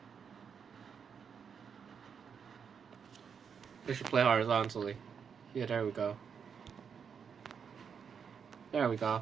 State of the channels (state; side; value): quieter; left; 6.8 dB